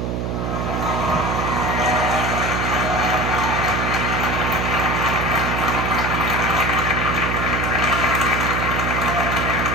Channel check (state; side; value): noise; right; hum, 2 dB below the sound